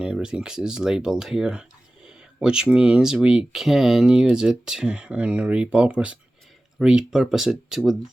everything is labeled here, which means we can use it and repurpose it with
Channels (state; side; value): normal; both; correlation 0.96